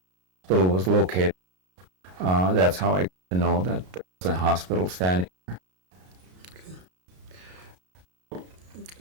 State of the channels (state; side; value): late; left; 33 ms